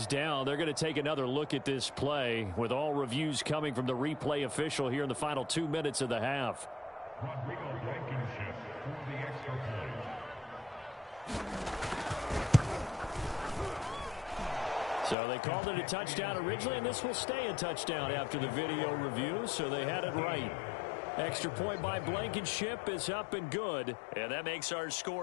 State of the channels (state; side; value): drops out; right; at 15.2 s